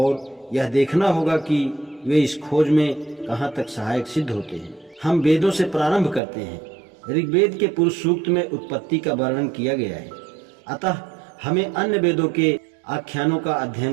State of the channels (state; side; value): drops out; left; at 6.2 s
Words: यह देखना होगा कि वे इस खोज में कहाँ तक सहायक सिद्ध होते हैं। हम वेदों से प्रारंभ करते हैं। ऋग्वेद के पुरुष सूक्त में उत्पत्ति का वर्णन किया गया है, अतः हमें अन्य वेदों के आख्यानों का अध्ययन